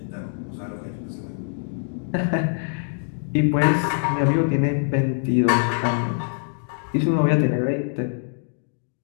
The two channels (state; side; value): silent; right; digital silence